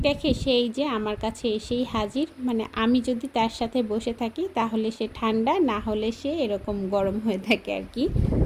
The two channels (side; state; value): both; identical; correlation 1.00